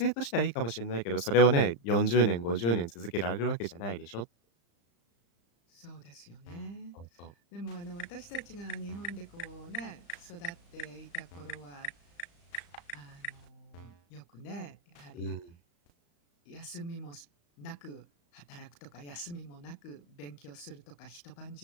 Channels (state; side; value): late; right; 35 ms